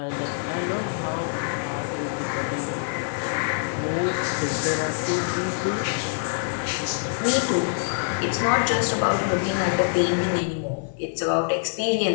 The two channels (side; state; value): right; silent; 58 dB below the other